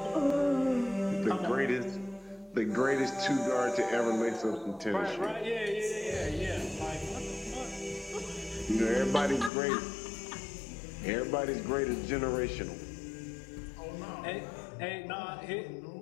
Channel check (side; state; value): right; drops out; at 9.5 s